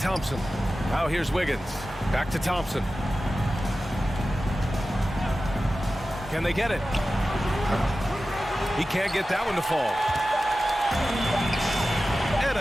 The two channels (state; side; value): normal; both; correlation 0.94